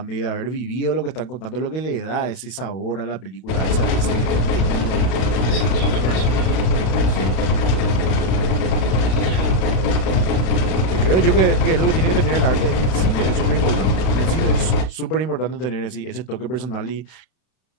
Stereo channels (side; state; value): right; late; 32 ms